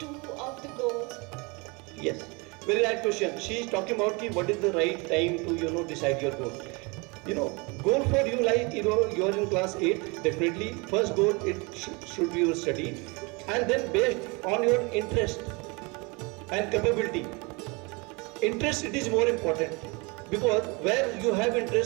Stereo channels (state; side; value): quieter; left; 28.3 dB